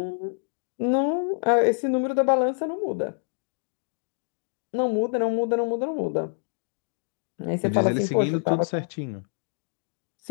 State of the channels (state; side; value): silent; right; digital silence